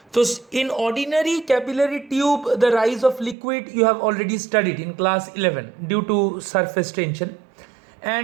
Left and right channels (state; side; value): drops out; left; at 3.4 s